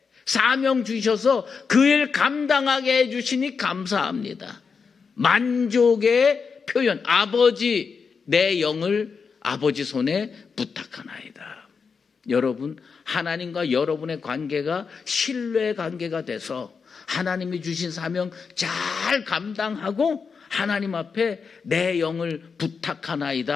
사명 주셔서 그 일 감당하게 해주시니 감사합니다. 만족의 표현. 아버지, 내 영을 아버지 손에 부탁하나이다. 여러분, 하나님과 여러분의 관계가 신뢰 관계가 돼서 하나님이 주신 사명 잘 감당하고 하나님 앞에 내 영을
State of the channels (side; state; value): right; quieter; 5.5 dB